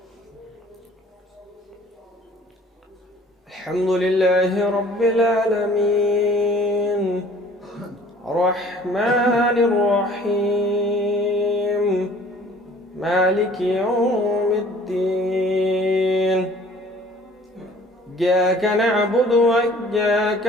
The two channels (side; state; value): both; normal; correlation 0.52